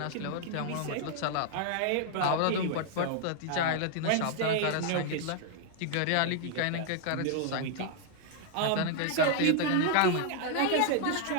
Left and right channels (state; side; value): different; both; correlation 0.00